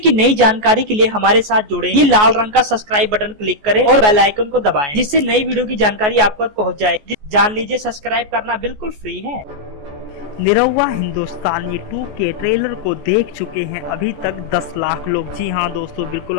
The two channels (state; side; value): late; left; 14 ms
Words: नई जानकारी के लिए हमारे साथ जुड़े। ये लाल रंग का सब्सक्राइब बटन क्लिक करें और बेल आइकन को दबाएं, जिससे नई वीडियो की जानकारी आप तक पहुंच जाए। जान लीजिए, सब्सक्राइब करना बिल्कुल फ्री है। निरहुआ हिंदुस्तानी 2 के ट्रेलर को देख चुके हैं अभी तक 10 लाख लोग। जी हाँ दोस्तों, बिल्कुल